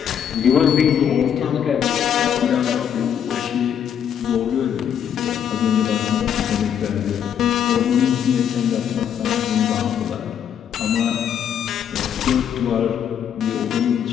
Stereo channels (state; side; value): quieter; right; 8.8 dB